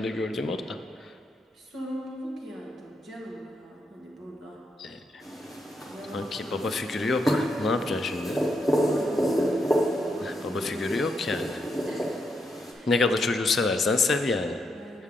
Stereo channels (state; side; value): normal; both; correlation 0.81